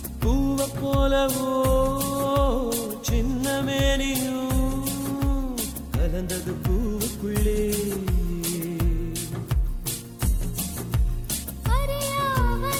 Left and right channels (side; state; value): both; identical; correlation 1.00